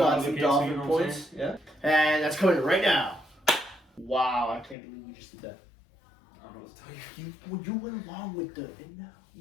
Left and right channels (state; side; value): drops out; right; at 4.8 s